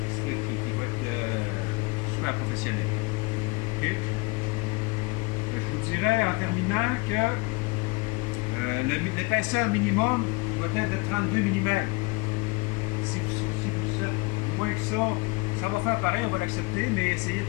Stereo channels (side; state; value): right; quieter; 26.1 dB